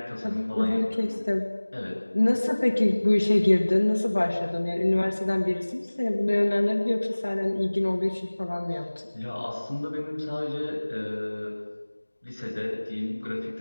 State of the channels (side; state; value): both; inverted; correlation -1.00